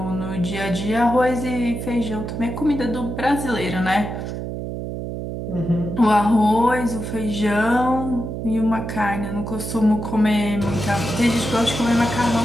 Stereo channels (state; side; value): noise; right; hum, 6 dB below the sound